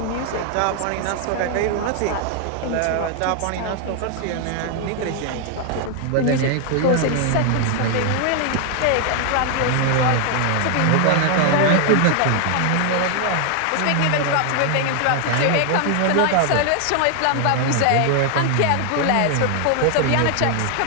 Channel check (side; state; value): both; different; correlation 0.00